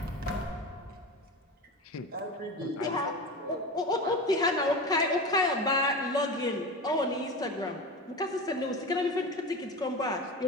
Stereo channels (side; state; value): both; normal; correlation 0.27